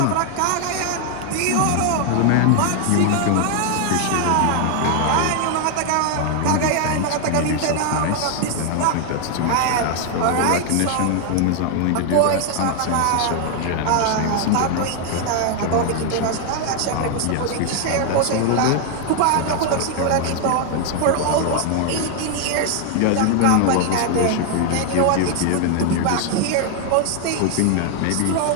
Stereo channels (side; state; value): both; different; correlation 0.00